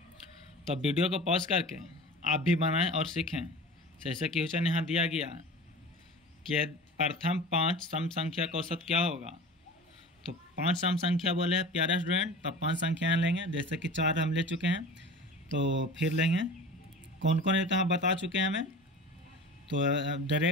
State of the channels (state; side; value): normal; both; correlation 0.37